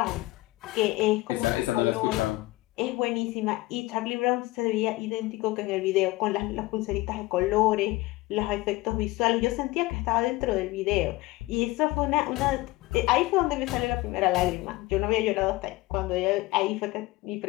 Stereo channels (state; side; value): quieter; right; 19.9 dB